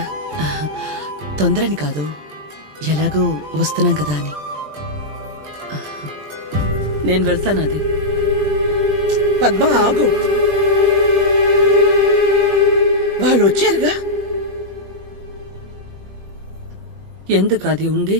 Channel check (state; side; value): late; left; 20 ms